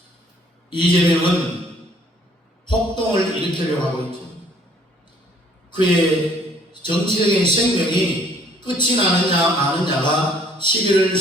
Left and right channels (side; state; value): both; normal; correlation 0.59